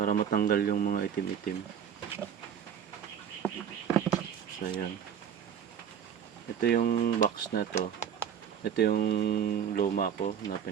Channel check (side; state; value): left; quieter; 8.4 dB